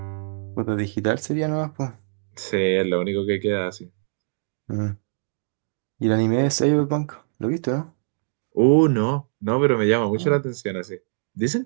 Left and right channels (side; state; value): left; silent; digital silence